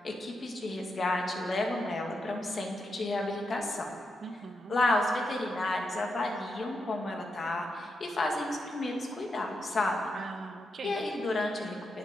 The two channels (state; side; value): normal; both; correlation 0.85